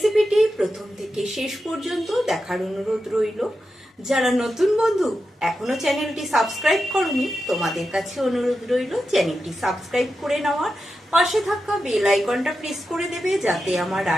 প্রথম থেকে শেষ পর্যন্ত দেখার অনুরোধ রইল। যারা নতুন বন্ধু এখনো চ্যানেলটি সাবস্ক্রাইব করনি, তোমাদের কাছে অনুরোধ রইল চ্যানেলটি সাবস্ক্রাইব করে নেওয়ার, পাশে থাকা বেল আইকনটা প্রেস করে দেবে যাতে আমার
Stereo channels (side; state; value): both; normal; correlation 0.89